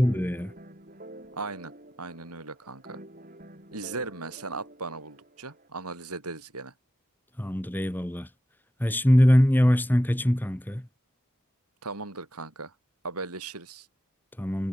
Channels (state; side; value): normal; both; correlation 0.91